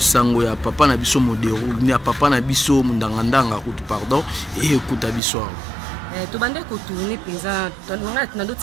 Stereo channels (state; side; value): drops out; left; at 5.2 s